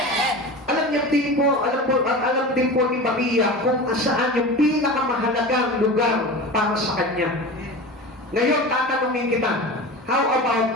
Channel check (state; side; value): normal; both; correlation 0.31